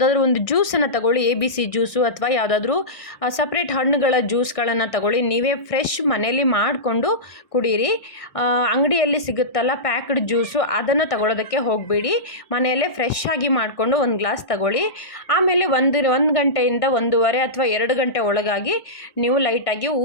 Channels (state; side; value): late; right; 1.6 ms